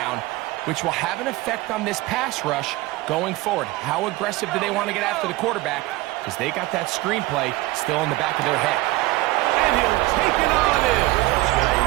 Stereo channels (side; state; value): left; quieter; 19.6 dB